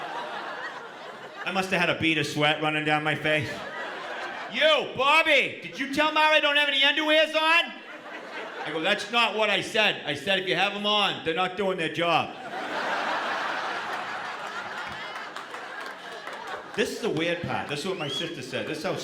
I must have had a bead of sweat running down my face. You, Bobby, did you tell Mara I don't have any underwears on? I go, that's not what I said. I said if you have them on, they're not doing their job. This is the weird part. This is what my sister said. This is how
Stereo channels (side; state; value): both; identical; correlation 1.00